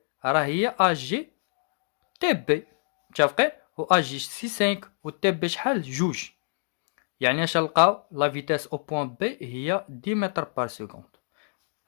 راه هي اجي تي بي. متفقين؟ و اجي سي 5 و تي بي شحال؟ جوج. يعني اش نلقاو؟ لا فيتاس او بوان بي هي 10 متر بار سكوند.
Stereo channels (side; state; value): right; silent; digital silence